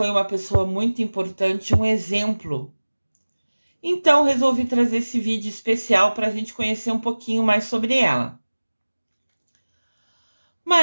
uma pessoa muito importante, um exemplo. Então resolvi trazer esse vídeo especial para a gente conhecer um pouquinho mais sobre ela.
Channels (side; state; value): both; inverted; correlation -1.00